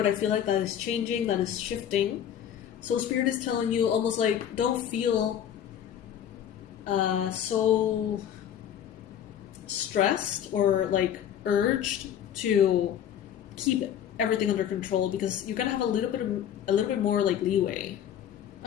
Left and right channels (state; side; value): quieter; right; 9.7 dB